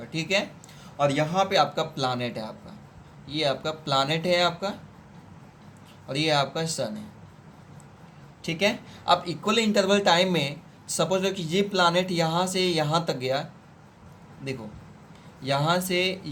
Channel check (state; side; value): identical; both; correlation 1.00